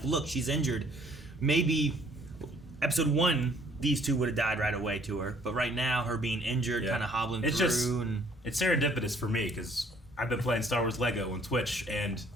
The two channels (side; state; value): both; normal; correlation 0.61